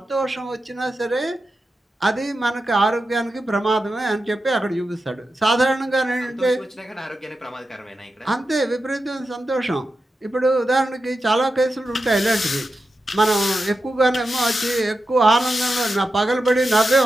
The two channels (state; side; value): normal; both; correlation 0.90